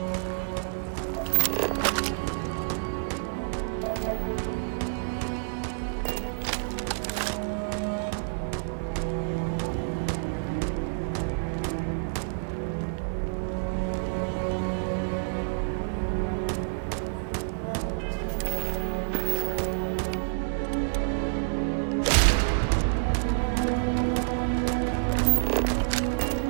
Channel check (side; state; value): left; silent; digital silence